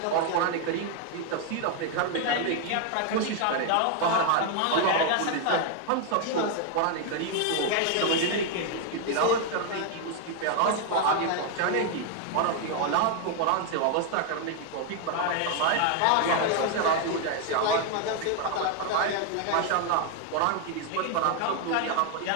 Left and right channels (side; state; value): both; different; correlation 0.00